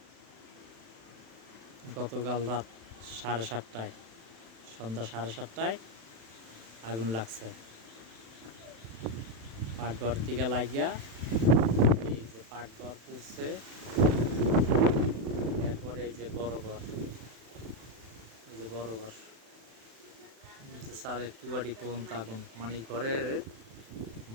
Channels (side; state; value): left; late; 36 ms